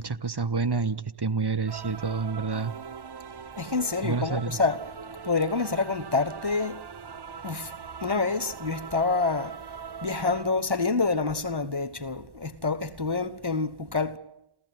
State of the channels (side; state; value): left; late; 1.1 ms